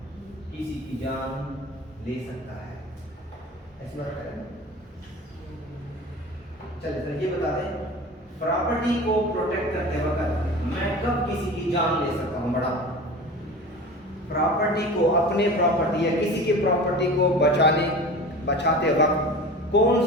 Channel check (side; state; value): both; normal; correlation 0.36